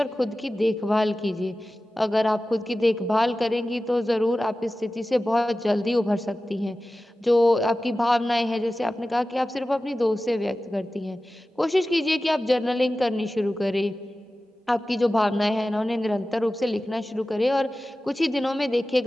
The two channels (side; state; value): both; normal; correlation 0.95